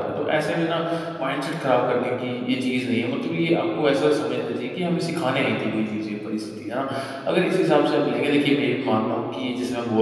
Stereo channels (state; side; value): identical; both; correlation 1.00